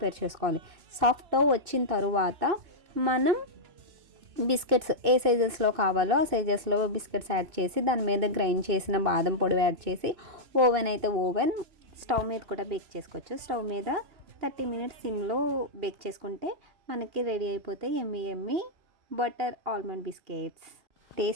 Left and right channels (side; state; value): left; late; 2.6 ms